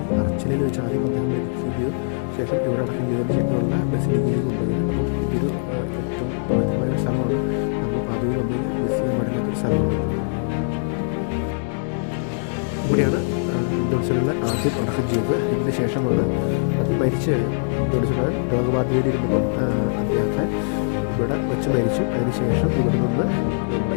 അർച്ചിലയിൽ വെച്ച് ആദ്യം അദ്ദേഹം മരിക്കുകയും ചെയ്തു. ശേഷം ഇവിടെ അടക്കം ചെയ്തതിന് ശേഷമുള്ള ബസിലിക്കയിൽ കൊണ്ടുപോയത്. അപ്പം ഇതൊരു ഏറ്റവും പവിത്രമായ ഒരു സ്ഥലമാണ്. നമ്മൾ പാതയിൽ വന്നു കഴിഞ്ഞാൽ മിസ് ചെയ്യാൻ പാടില്ലാത്തൊരു സ്ഥലമാണ് ഇത്. ഇവിടെയാണ് അന്തോണിസ്വരനെ ആദ്യം അടക്കം ചെയ്തത്. ഇതിന് ശേഷമാണ് അത് മരിച്ച് അന്തോണിസ്വരൻ രോഗബാധിതയിലിരുന്നപ്പം അദ്ദേഹത്തെ ഇവിടെ വെച്ച് മരിച്ചു. അതിനുശേഷം ഇവിടെ നിന്ന് നമ്മുടെ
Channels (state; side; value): silent; right; digital silence